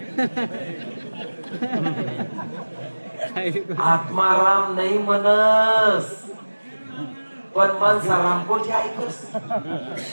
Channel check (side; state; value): both; inverted; correlation -1.00